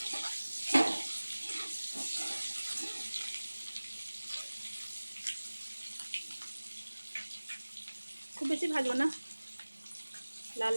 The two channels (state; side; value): inverted; both; correlation -1.00